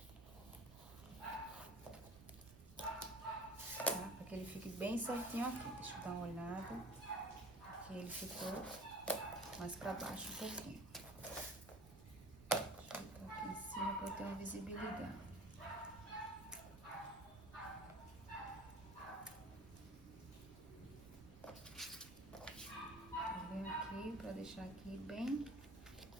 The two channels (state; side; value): noise; right; rumble, 19 dB below the sound